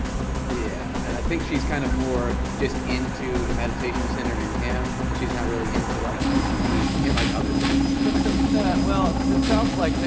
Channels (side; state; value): both; identical; correlation 1.00